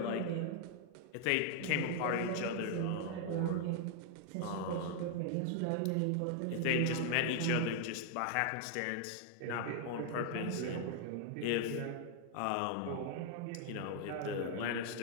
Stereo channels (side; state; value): both; different; correlation 0.00